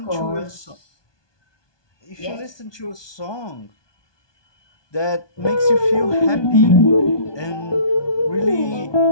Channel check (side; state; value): right; late; 1.2 ms